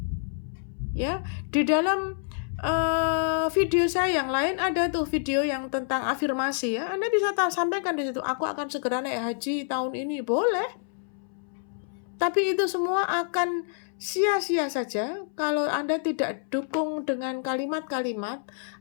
Ya, di dalam video saya yang lain ada tuh video yang tentang afirmasi ya. Anda bisa sampaikan di situ, aku akan segera naik haji tahun ini, boleh. Tapi itu semua akan sia-sia saja kalau Anda tidak dukung dengan kalimat-kalimat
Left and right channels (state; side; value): silent; right; 60 dB below the other